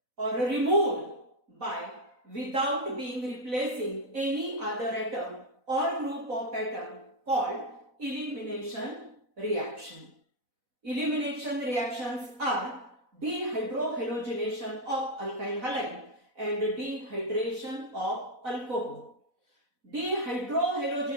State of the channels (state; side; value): late; left; 4.0 ms